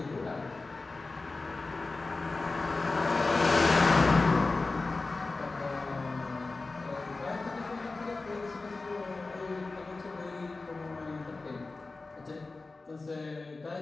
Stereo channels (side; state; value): right; quieter; 3.6 dB